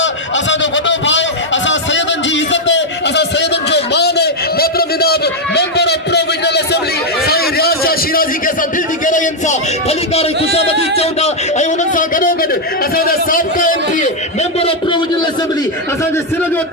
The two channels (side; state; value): both; normal; correlation 0.00